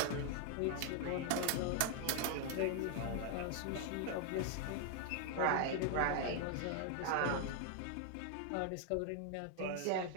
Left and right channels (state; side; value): different; both; correlation 0.00